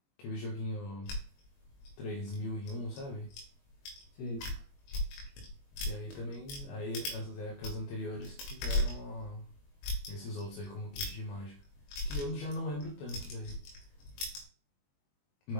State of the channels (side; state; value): right; late; 21 ms